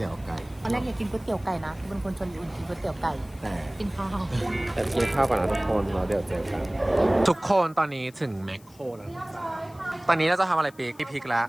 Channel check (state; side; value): noise; left; hiss, 26 dB below the sound